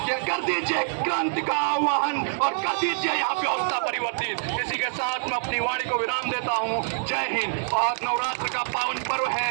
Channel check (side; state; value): left; silent; digital silence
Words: कि कर दीजिए क्रांति का आह्वान और कर दीजिए यहाँ व्यवस्था परिवर्तित। इसी के साथ मैं अपनी वाणी को विराम देता हूँ। जय हिंद। और नवरात्र का पावन पर्व है,